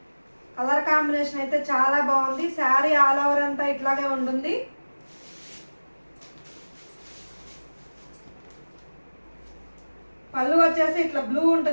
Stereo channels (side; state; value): both; inverted; correlation -1.00